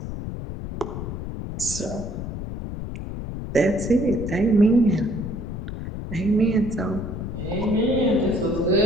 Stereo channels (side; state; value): left; noise; rumble, 6 dB below the sound